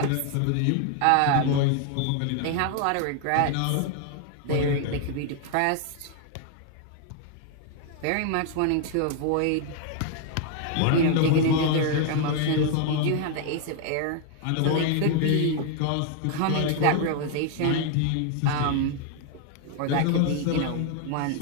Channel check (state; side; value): different; both; correlation 0.00